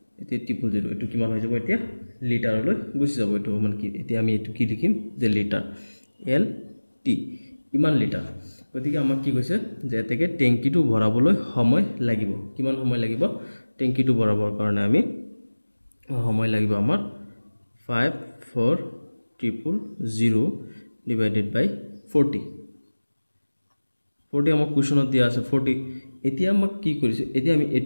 এতিয়া 000 এটো কিমান হৈ যাব এতিয়া লিটাৰলৈ গুছি যাব এটো মানে কি এতিয়া আমি এটো কি লিখিম যে লিটাৰ এল টি ইমান লিটাৰ গতিকে আমাক কি কৈছে যে এতেকে টেংকিটো ভৰাবলৈ সময় লাগিব কিমান সময় লাগিব টেংকিটো ভৰাবৰ কাৰণে আমি সময় লাগিব আমাৰ 54000 divided by 40 আমাক কোৱেশ্যনত দিয়া আছে 40 এতিয়া আমাক কি কৰিছে এতিয়া আমি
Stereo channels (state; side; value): inverted; both; correlation -1.00